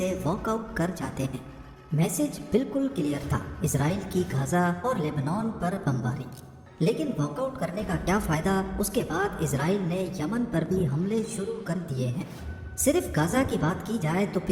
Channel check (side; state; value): both; identical; correlation 1.00